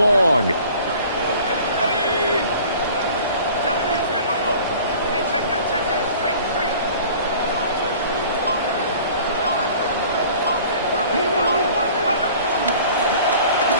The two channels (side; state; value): both; inverted; correlation -0.47